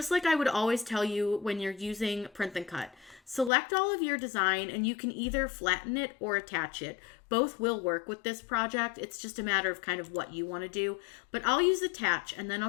like I would always tell you when you're using Print and Cut, select all of your design and you can either flatten it or attach it. Both will work with this project. It's just a matter of kind of what you want to do. But I'll use attach and then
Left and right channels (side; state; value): right; drops out; at 3.5 s